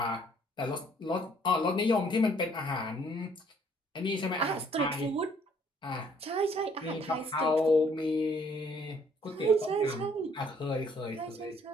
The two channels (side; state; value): both; normal; correlation 0.62